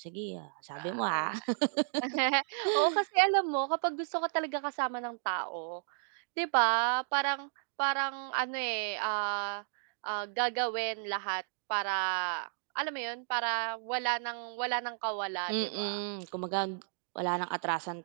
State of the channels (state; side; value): silent; left; digital silence